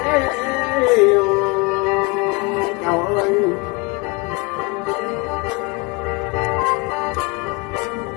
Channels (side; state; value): right; quieter; 27.9 dB